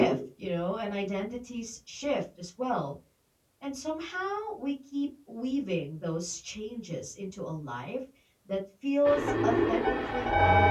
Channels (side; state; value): both; identical; correlation 1.00